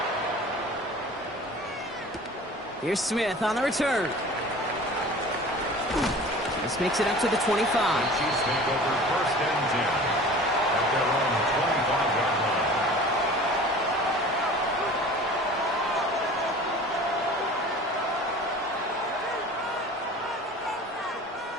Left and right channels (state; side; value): normal; both; correlation 0.42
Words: Here's Smith on the return. This makes it up to the 25. Chiefs take over 1st and 10 at their own 25-yard line.